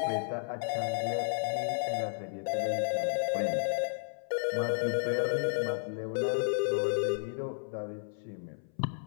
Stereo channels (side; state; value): right; silent; 56 dB below the other